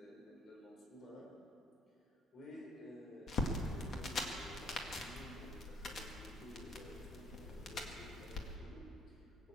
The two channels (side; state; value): both; normal; correlation 0.64